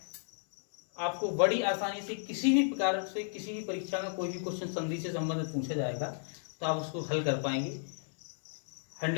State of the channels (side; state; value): right; silent; 56 dB below the other